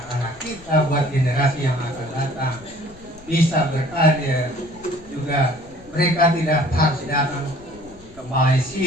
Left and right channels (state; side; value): noise; left; rumble, 22 dB below the sound